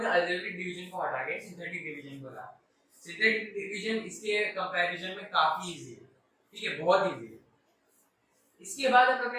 ने अलजेब्रिक डिवीजन को हटा के सिंथेटिक डिवीजन को लाया। सिंथेटिक डिवीजन इसके कंपैरिजन में काफी इजी है, ठीक है, बहुत इजी है। इसके बाद हम लोग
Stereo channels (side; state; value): both; identical; correlation 1.00